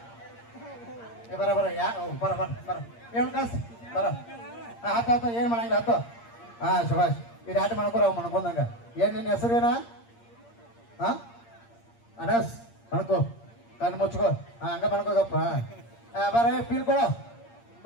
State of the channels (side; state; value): right; late; 8.6 ms